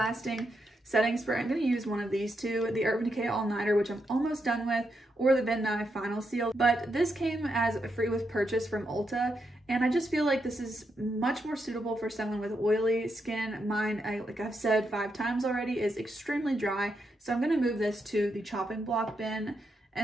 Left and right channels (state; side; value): normal; both; correlation 0.82